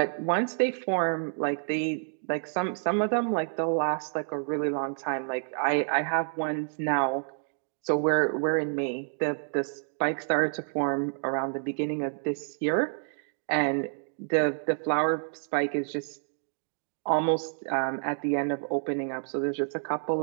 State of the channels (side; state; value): left; silent; digital silence